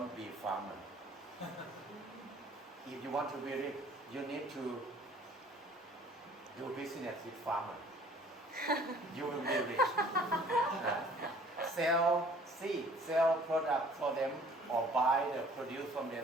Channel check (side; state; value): both; normal; correlation 0.54